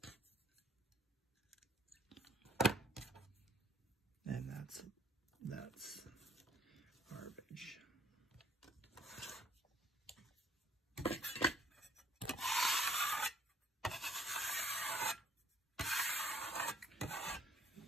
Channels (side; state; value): both; normal; correlation 0.63